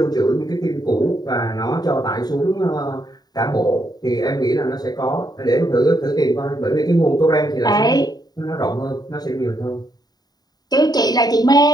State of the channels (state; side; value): late; right; 0.19 ms